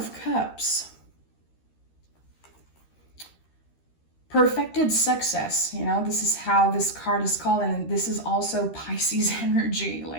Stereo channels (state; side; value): late; right; 13 ms